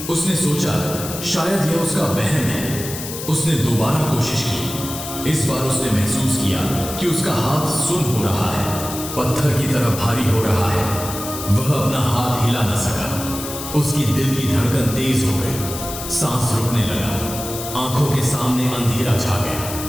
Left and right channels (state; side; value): noise; left; hiss, 9 dB below the sound